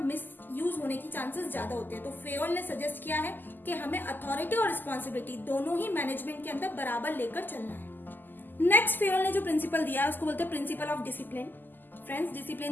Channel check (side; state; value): right; late; 0.089 ms